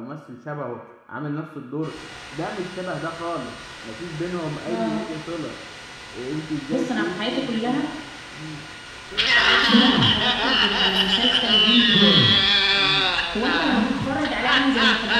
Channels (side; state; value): both; identical; correlation 1.00